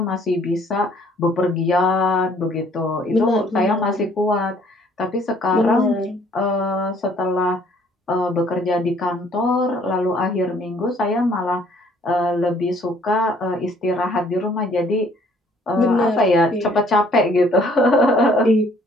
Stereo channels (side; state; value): both; normal; correlation 0.60